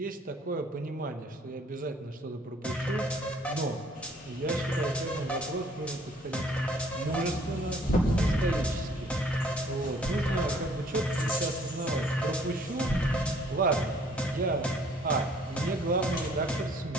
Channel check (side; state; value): both; normal; correlation 0.59